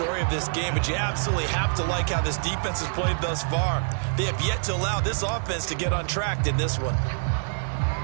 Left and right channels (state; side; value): silent; left; 55 dB below the other